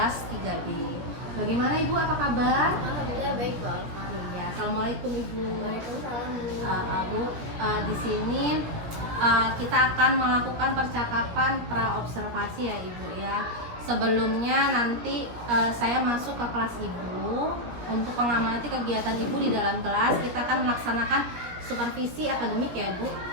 3B. Bagaimana Ibu, apa kabar? Alhamdulillah baik, Bu Alfa. Iya, Assalamualaikum Ibu. Waalaikumsalam. Bu, di sini kita akan melakukan percakapan pra-observasi ya Ibu ya. Sebelumnya nanti saya masuk ke kelas Ibu untuk mengamati kegiatan Ibu di dalam kelas. Kita akan melaksanakan supervisi akademik ya Ibu.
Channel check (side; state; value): left; late; 17 ms